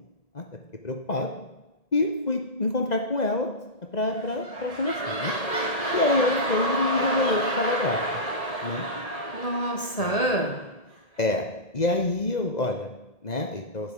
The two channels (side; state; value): right; late; 1.8 ms